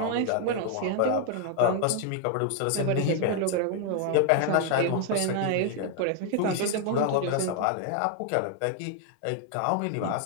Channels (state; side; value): different; both; correlation 0.00